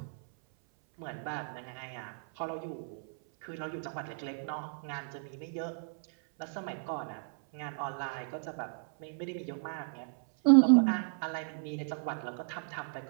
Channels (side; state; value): left; silent; 55 dB below the other